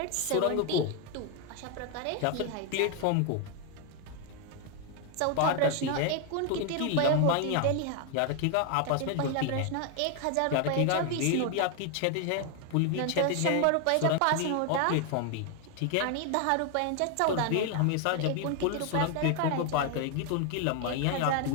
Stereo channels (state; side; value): different; both; correlation 0.01